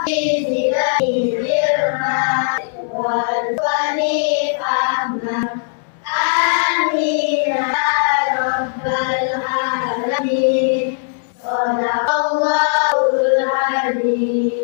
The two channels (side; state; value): right; silent; 67 dB below the other